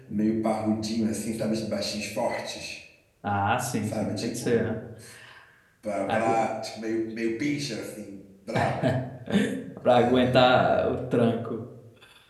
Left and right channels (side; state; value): both; identical; correlation 1.00